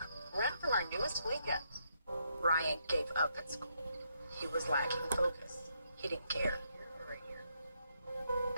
Rent from our newest weekend. Ryan gave up at school. He was lacking focus. He didn't care.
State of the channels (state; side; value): inverted; both; correlation -0.77